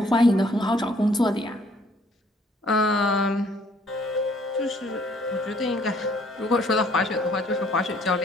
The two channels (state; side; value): normal; both; correlation 0.62